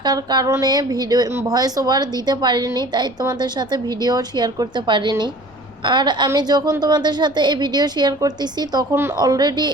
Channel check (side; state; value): left; noise; rumble, 28 dB below the sound